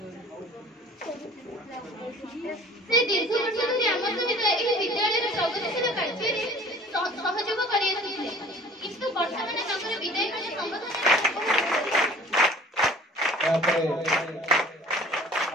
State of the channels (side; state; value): both; normal; correlation 0.48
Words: ସେ ଦୀର୍ଘ ବର୍ଷ ଧରି ଆମ ସହିତ ଏହି ବିଦ୍ୟାଳୟର ପ୍ରଗତିଶୀଳ କାର୍ଯ୍ୟରେ ସହଯୋଗ କରିଆସୁଥିଲେ କିନ୍ତୁ ବର୍ତ୍ତମାନ ତାଙ୍କର ବିଦାୟ ବେଳ ସମ୍ବୋଧନ